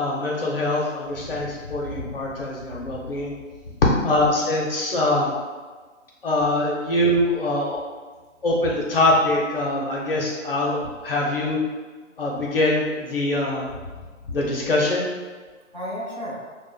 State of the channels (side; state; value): both; normal; correlation 0.18